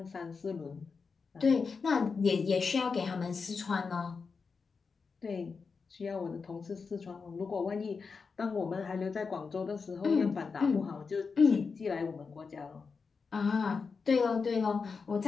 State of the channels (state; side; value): quieter; right; 5.1 dB